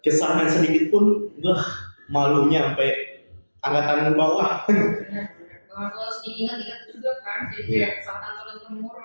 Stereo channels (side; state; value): both; inverted; correlation -1.00